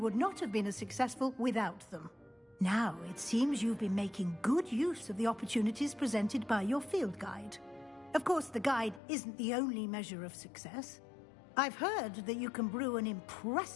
not have been as successful without them. Now, it seems you've been making good use of the opportunities presented by your field guide. Of course, the guide isn't the only measure of success. I've heard that you can brew an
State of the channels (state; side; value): drops out; right; at 9.0 s